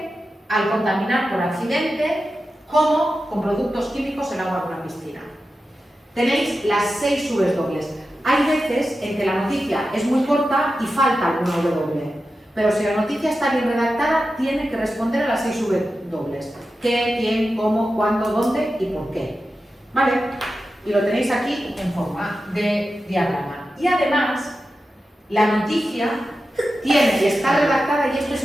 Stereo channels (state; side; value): normal; both; correlation 0.92